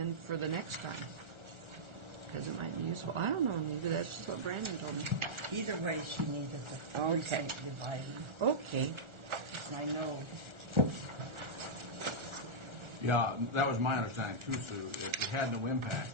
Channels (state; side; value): late; left; 1.4 ms